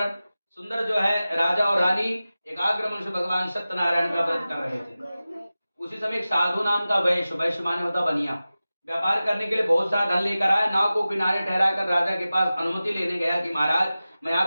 सुंदर जो है राजा और रानी एकाग्र मन से भगवान सत्यनारायण का व्रत कर रहे थे। उसी समय एक साधु नाम का वैश्य, वैश्य माने होता बनिया, व्यापार करने के लिए बहुत सारा धन लेकर आया। नाव को किनारे ठहराकर राजा के पास अनुमति लेने गया कि महाराज मैं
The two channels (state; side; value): inverted; both; correlation -0.96